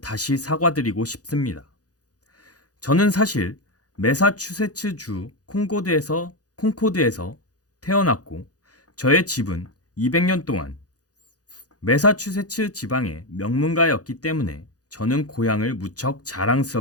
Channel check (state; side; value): late; right; 0.67 ms